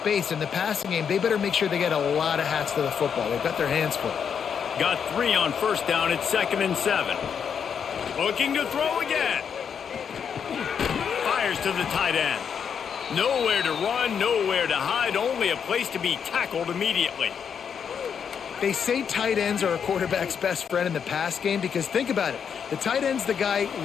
In the passing game, they better make sure they get a lot of hats to the football. They've got their hands full. Got 3 on first down. It's 2nd and 7. Looking to throw again. Fires to the tight end. Nowhere to run, nowhere to hide, only a place to be tackled immediately. They say tight ends are a quarterback's best friend in the pass game because think about it. The tight end's the guy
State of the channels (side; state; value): right; quieter; 7.3 dB